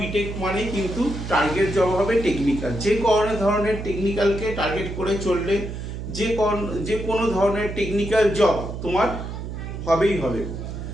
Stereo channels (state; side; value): noise; right; hum, 7 dB below the sound